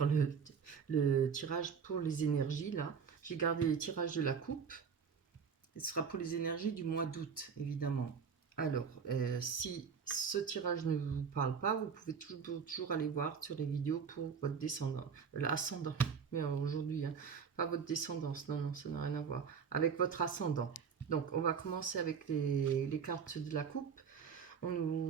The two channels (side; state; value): left; quieter; 6.4 dB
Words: le tirage pour les énergies là. J'ai gardé les tirages de la coupe. Ce sera pour les énergies du mois d'août, évidemment. Alors, si ce tirage ne vous parle pas, vous pouvez toujours aller voir sur les vidéos pour votre descendant, l'ascendant. Mais aujourd'hui, hein, pas votre descendance, non, ça n'a rien à voir. Avec votre ascendant. Donc, on va commencer avec les cartes de la coupe.